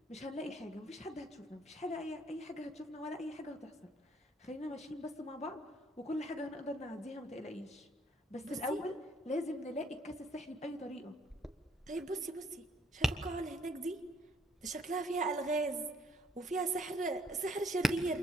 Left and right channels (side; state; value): both; normal; correlation 0.65